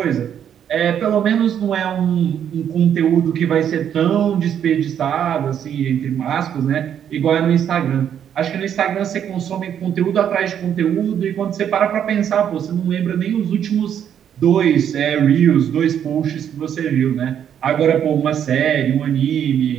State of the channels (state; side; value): quieter; left; 9.2 dB